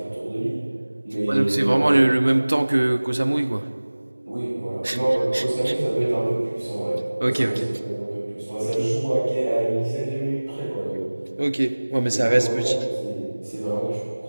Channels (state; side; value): inverted; both; correlation -1.00